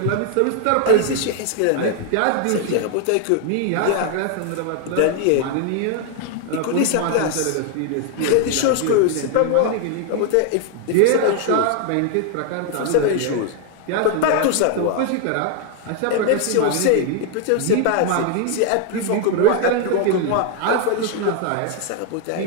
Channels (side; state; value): both; different; correlation 0.00